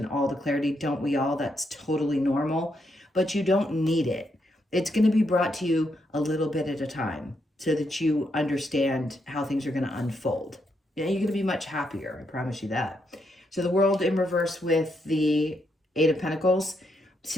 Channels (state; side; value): normal; both; correlation 0.79